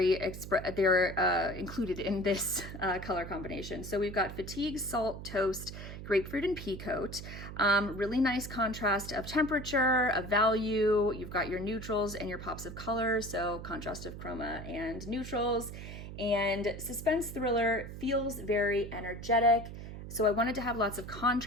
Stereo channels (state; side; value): noise; right; hum, 10 dB below the sound